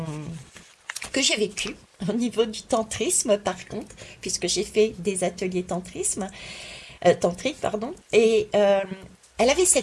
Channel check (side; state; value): both; identical; correlation 1.00